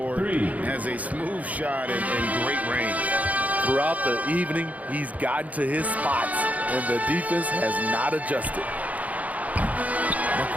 has a smooth shot and great range. Throughout the evening, he's gotten to his spots, and the defense has not adjusted.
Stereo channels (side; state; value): left; late; 0.072 ms